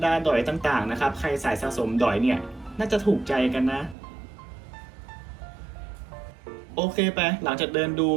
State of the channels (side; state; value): left; drops out; at 4.0 s